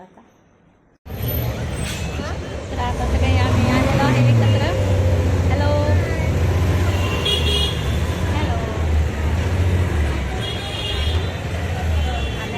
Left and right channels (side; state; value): both; identical; correlation 1.00